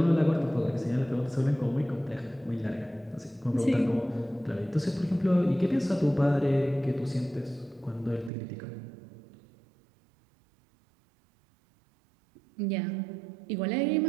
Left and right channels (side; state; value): left; drops out; at 8.3 s